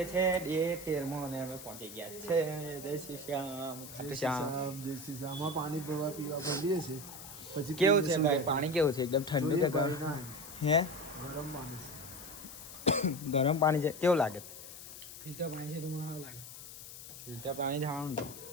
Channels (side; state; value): left; noise; hiss, 13 dB below the sound